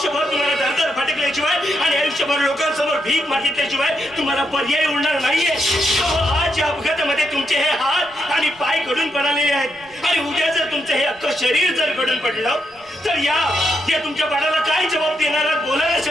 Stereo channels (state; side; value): noise; right; rumble, 29 dB below the sound